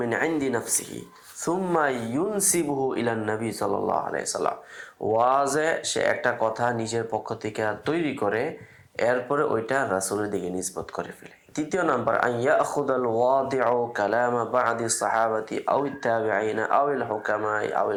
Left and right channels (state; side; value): identical; both; correlation 1.00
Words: মিন ইনদি নাফসিহি সুম্মা ইউনসিবুহু ইলা নবী সাল্লাল্লাহু আলাইহি সাল্লাম, ওয়াজে সে একটা কথা নিজের পক্ষ থেকে তৈরি করে এরপরে ওইটা রাসূলের দিকে নিসবত করে ফেলে। তৃতীয় নাম্বার আন ইয়াখুদাল ওয়াদিউ কালামা বা'দি সাহাবাতি আও তাবিঈনা আও আল হুকামা আও